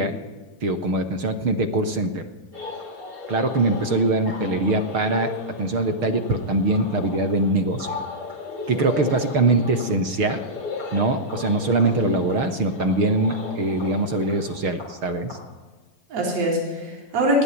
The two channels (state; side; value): late; left; 6.5 ms